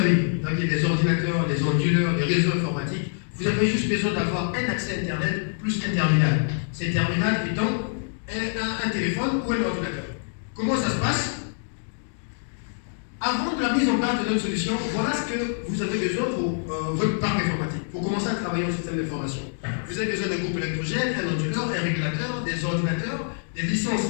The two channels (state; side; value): silent; right; digital silence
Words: Donc, il y a des ordinateurs, des onduleurs, des réseaux informatiques. Vous avez juste besoin d'avoir un accès Internet plus un terminal. Ces terminals étant un téléphone ou un ordinateur. Comment ça se passe? Avant de la mise en place de notre solution, voilà ce que vous avez besoin pour votre parc informatique, pour commencer à travailler en système d'information. Vous avez besoin d'un groupe électrogène, un onduleur, un régulateur, des ordinateurs, des licences